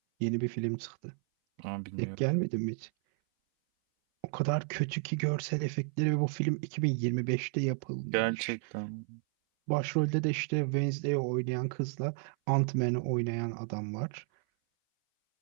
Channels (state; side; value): silent; left; 56 dB below the other